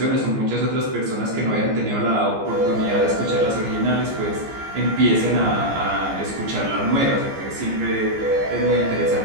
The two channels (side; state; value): left; late; 15 ms